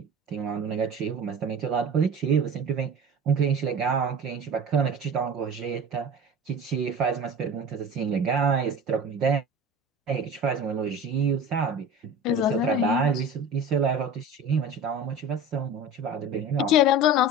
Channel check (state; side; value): normal; both; correlation 0.35